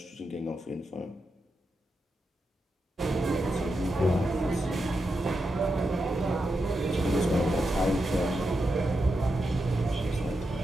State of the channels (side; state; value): both; normal; correlation 0.87